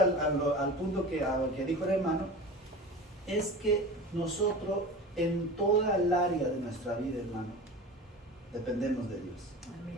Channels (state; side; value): normal; both; correlation 0.34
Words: punto que dijo el hermano, es que nosotros en toda el área de nuestra vida, hermano, dependemos de Dios. Amén.